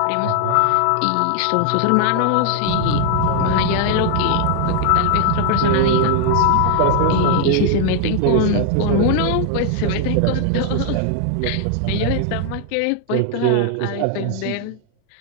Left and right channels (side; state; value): both; different; correlation 0.00